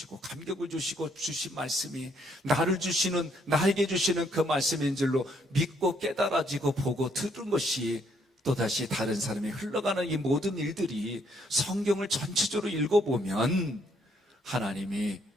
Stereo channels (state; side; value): normal; both; correlation 0.69